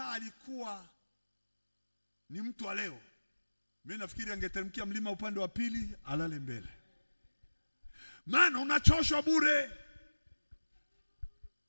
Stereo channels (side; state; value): both; inverted; correlation -1.00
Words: alikuwa ni mtu wa leo, mimi nafikiri angeteremkia mlima upande wa pili alale mbele. Maana unachoshwa bure.